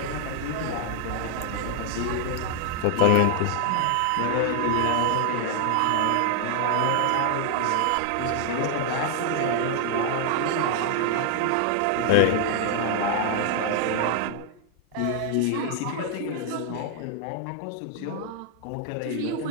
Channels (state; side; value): different; both; correlation 0.00